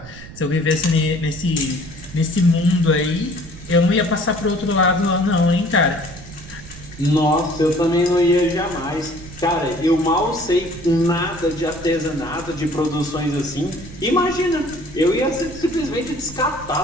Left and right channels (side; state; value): right; noise; rumble, 16 dB below the sound